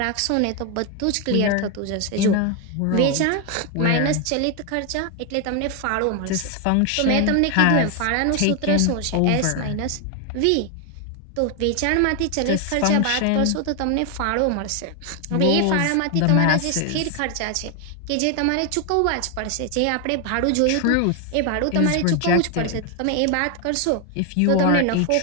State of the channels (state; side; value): different; both; correlation 0.01